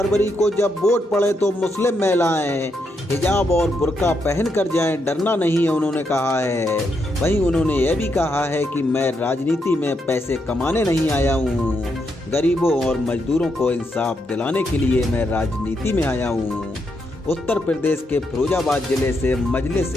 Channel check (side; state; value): both; normal; correlation 0.80